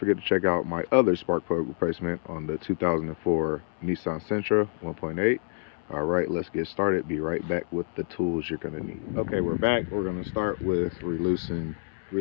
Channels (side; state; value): right; silent; 60 dB below the other